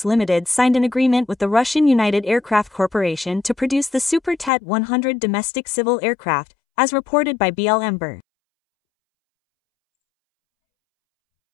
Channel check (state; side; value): drops out; right; at 4.5 s